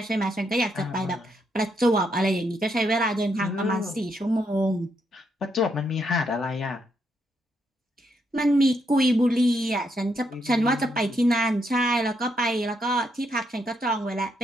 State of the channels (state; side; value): normal; both; correlation 0.77